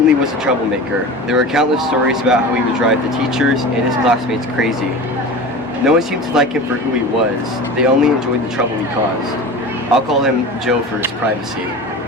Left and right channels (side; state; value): both; normal; correlation 0.33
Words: was a troublemaker. There were countless stories about how he would drive the teachers and his classmates crazy. No one seemed to like him for who he was. They only enjoyed the trouble he caused. I'll call him Joe for his privacy.